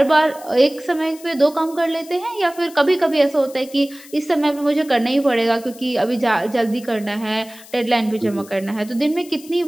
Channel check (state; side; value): noise; left; hiss, 20 dB below the sound